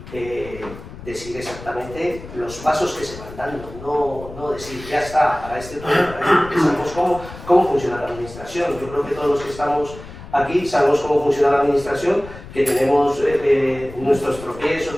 decir exactamente los pasos que se van dando, no decir ya está, para este tema, porque sabemos cómo funciona la administración. Yo creo que todos los que estamos aquí sabemos cómo funciona la administración, que tenemos nuestros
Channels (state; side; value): noise; left; rumble, 15 dB below the sound